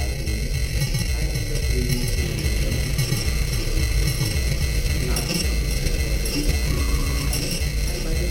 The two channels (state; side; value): identical; both; correlation 1.00